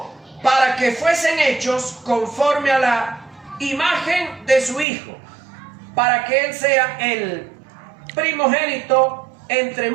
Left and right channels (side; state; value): left; drops out; at 4.9 s